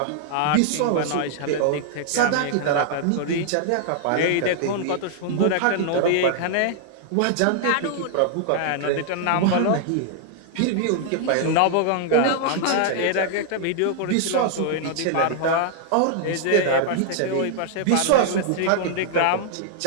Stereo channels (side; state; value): both; different; correlation -0.01